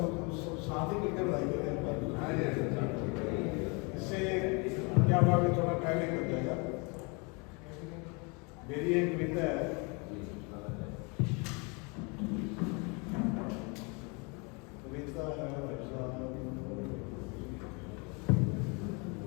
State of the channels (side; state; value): right; quieter; 31.3 dB